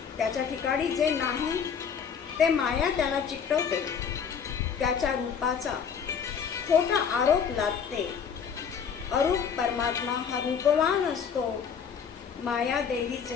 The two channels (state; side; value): quieter; right; 7.0 dB